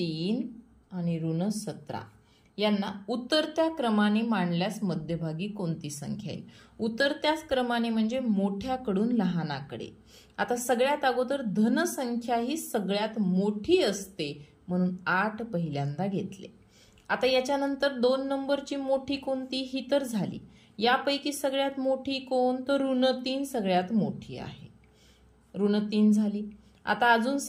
आणि ऋण 17 यांना उतरत्या क्रमाने मांडल्यास मध्यभागी कोणती संख्या येईल? उतरत्या क्रमाने म्हणजे मोठ्याकडून लहानाकडे. आता सगळ्यात अगोदर धन संख्या ही सगळ्यात मोठी असते म्हणून 8 पहिल्यांदा घेतले. आता याच्यानंतर 2 नंबरची मोठी कोणती ही तर झाली. यापैकी सगळ्यात मोठी कोण तर ऋण 3 सगळ्यात मोठी आहे. ऋण 3 झाली. आता अजून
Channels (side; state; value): both; identical; correlation 1.00